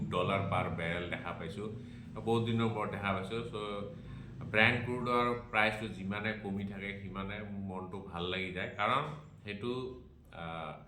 পাৰ বেৰেল দেখা পাইছোঁ, বহুত দিনৰ মূৰত দেখা পাইছোঁ। চ' ব্ৰেণ্ট ক্ৰুডৰ প্ৰাইচটো যিমানে কমি থাকে সিমানে মোৰ মনটো ভাল লাগি যায়, কাৰণ সেইটো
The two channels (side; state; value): both; identical; correlation 1.00